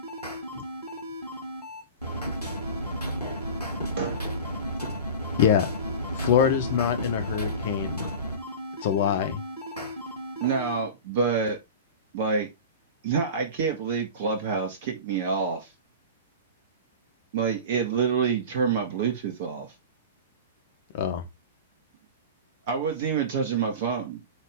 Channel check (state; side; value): inverted; both; correlation -0.32